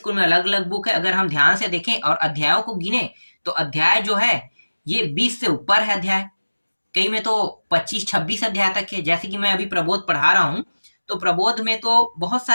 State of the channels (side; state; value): both; inverted; correlation -1.00